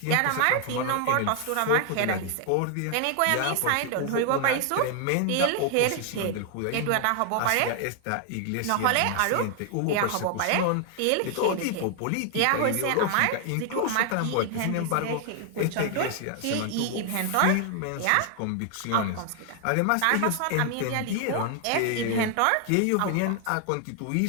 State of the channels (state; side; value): different; both; correlation 0.00